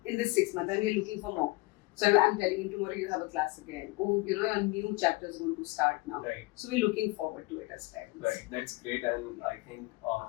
in this 6 months. And we're looking for more. So I'm telling him tomorrow you have a class again. Oh, you know, your new chapter is going to start now. Right. So we're looking forward to it as parents. Right. That's great, and I think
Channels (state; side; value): quieter; right; 22.5 dB